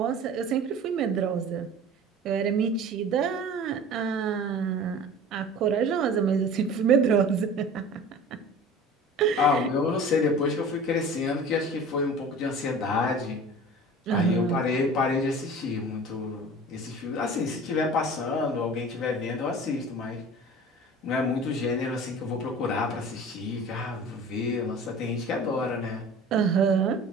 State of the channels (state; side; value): normal; both; correlation 0.40